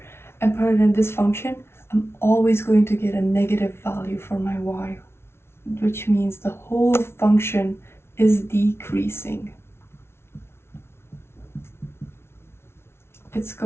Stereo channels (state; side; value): late; right; 0.12 ms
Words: and put it in this function, I'm always going to get a negative value for my y, which means the whole function is decreasing. It's